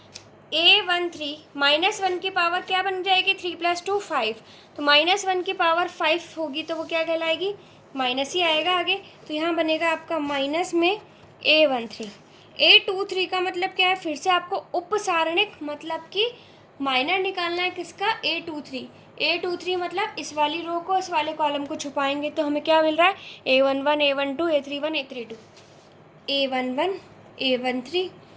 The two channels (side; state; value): both; identical; correlation 1.00